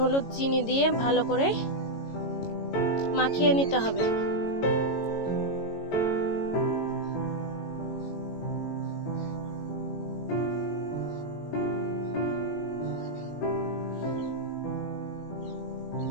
চিনি দিয়ে ভালো করে মাখিয়ে নিতে হবে।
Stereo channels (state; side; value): late; right; 18 ms